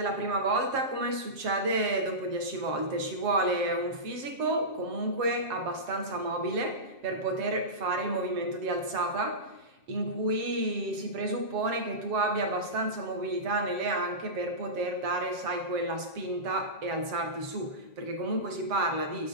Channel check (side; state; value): left; late; 7.4 ms